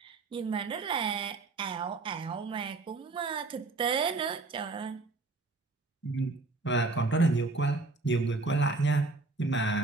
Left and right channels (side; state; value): left; quieter; 3.5 dB